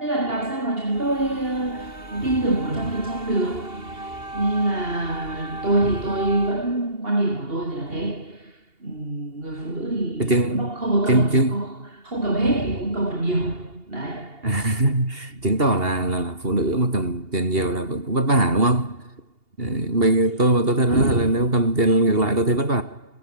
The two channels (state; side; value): late; left; 2.8 ms